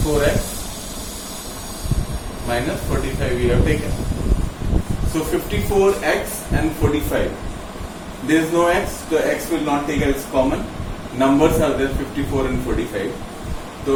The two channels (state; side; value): identical; both; correlation 1.00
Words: minus 45 we have taken. So 54x and 45. There is no x, the x will not take as common. Numbers are there 54 and 45.